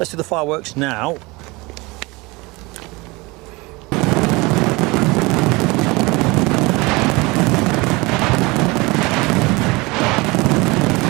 do the fireworks now.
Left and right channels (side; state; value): left; quieter; 24.1 dB